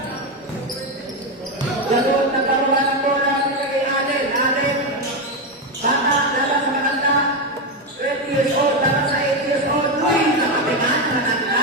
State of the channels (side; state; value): both; normal; correlation 0.10